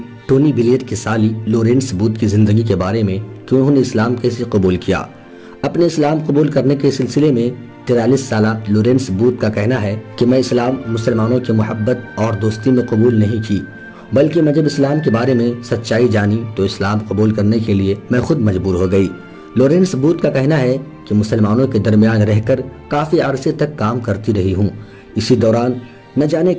ٹونی بلیئر کی سالی لورنس بوتھ کی زندگی کے بارے میں کہ انہوں نے اسلام کیسے قبول کیا۔ اپنے اسلام قبول کرنے کے سلسلے میں 43 سالہ لورنس بوتھ کا کہنا ہے کہ میں اسلام مسلمانوں کی محبت اور دوستی میں قبول نہیں کی، بلکہ میں جب اسلام کے بارے میں سچائی جانی تو اسلام قبول کرنے کے لیے میں خود مجبور ہو گئی۔ لورنس بوتھ کا کہنا ہے کہ مسلمانوں کے درمیان رہ کر کافی عرصے تک کام کرتی رہی ہوں، اسی دوران نہ جانے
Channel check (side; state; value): both; identical; correlation 1.00